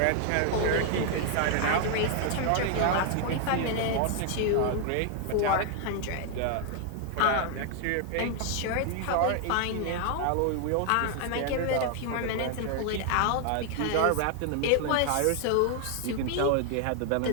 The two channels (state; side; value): different; both; correlation 0.00